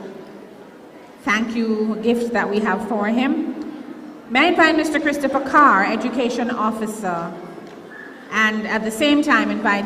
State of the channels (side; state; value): both; identical; correlation 1.00